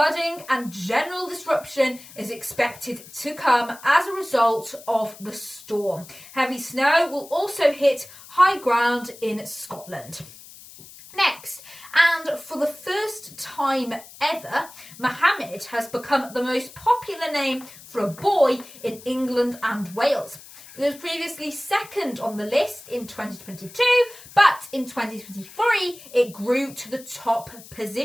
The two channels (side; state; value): left; noise; hiss, 19 dB below the sound